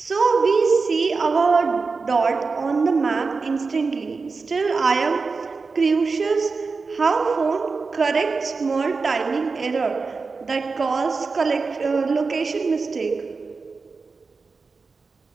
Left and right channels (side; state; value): left; quieter; 4.4 dB